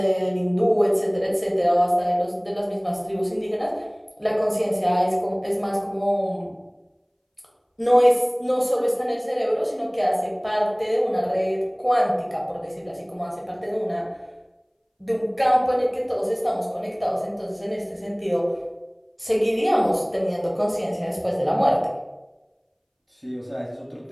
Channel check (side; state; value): both; identical; correlation 1.00